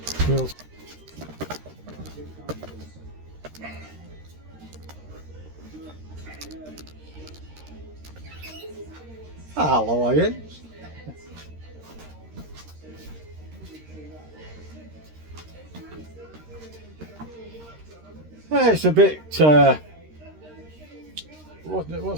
Hello again. It's a bit,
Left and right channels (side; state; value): left; late; 13 ms